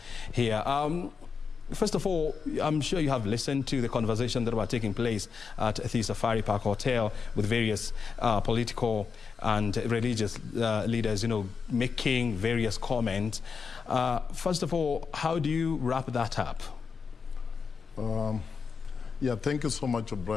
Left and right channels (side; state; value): right; quieter; 5.6 dB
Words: here. First of all, I'm sure you have listened to the conversation that were taking place at the Safari Park Hotel with various political and religious leaders, making various comments. First of all, how do you wrap that up? Thank you so much,